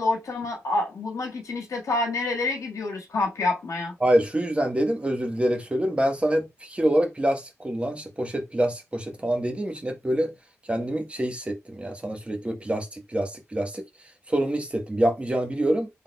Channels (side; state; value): both; normal; correlation 0.88